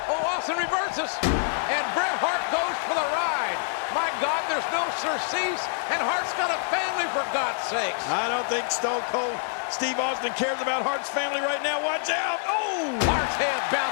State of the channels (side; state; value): right; silent; 61 dB below the other